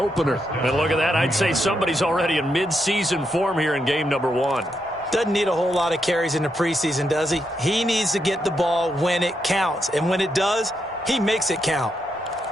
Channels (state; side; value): normal; both; correlation 0.81